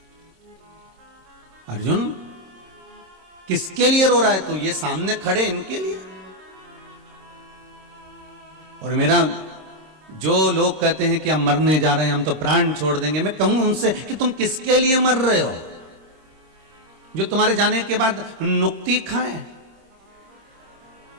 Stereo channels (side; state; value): left; late; 26 ms